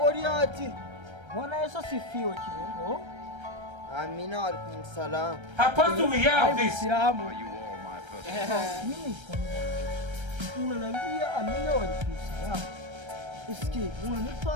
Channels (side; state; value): left; late; 1.3 ms